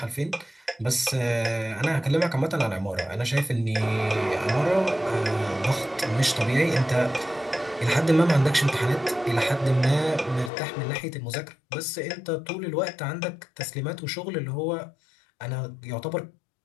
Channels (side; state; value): right; drops out; at 10.5 s